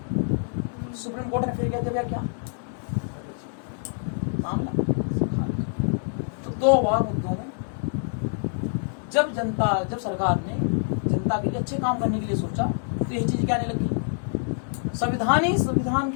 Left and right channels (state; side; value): silent; right; 61 dB below the other